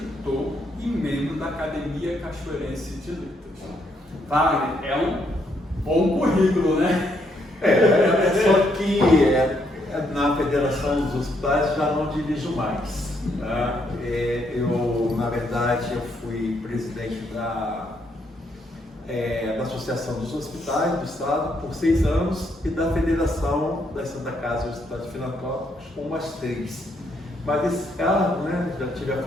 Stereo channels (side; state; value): both; normal; correlation 0.74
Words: e membro da Academia Cachoeirense de Letras. Wagner, é um bom currículo, né? Só que na Federação dos Hospitais já não dirijo mais. Tá? Na verdade, eu fui presidente da Associação dos Hospitais do Estado por 6 anos e da Federação da Santa Casa dos Hospitais Filantrópicos por mais 3. Mas esse cargo, já tive à